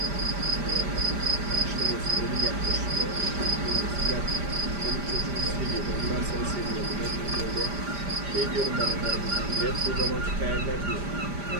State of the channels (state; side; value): late; left; 5.0 ms